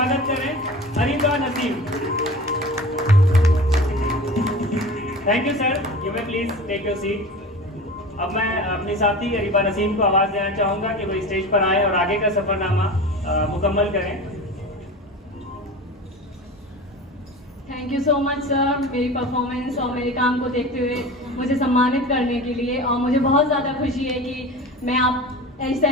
करें। Areeba Naseem. Thank you sir, you may please take your seat. अब मैं अपनी साथी अरीबा नसीम को आवाज़ देना चाहूँगा कि वो स्टेज पर आए और आगे का सफ़रनामा मुकम्मल करें। Thank you so much sir, मेरी परफॉर्मेंस और मेरे काम को देखते हुए मुझे सम्मानित करने के लिए। और मुझे बहुत ज़्यादा खुशी है कि मैं आप इस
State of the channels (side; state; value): both; normal; correlation 0.34